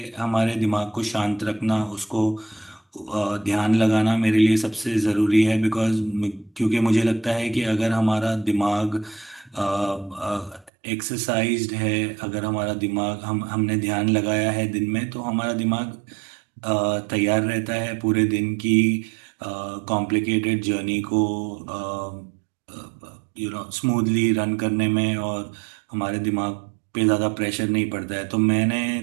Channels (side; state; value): left; drops out; at 10.7 s